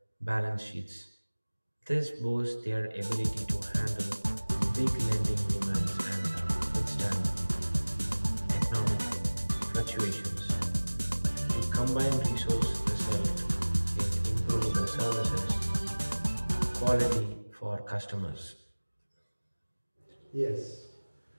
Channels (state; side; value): inverted; both; correlation -1.00